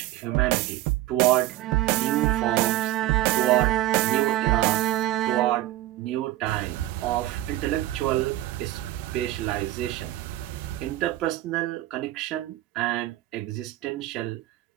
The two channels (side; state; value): left; quieter; 15.5 dB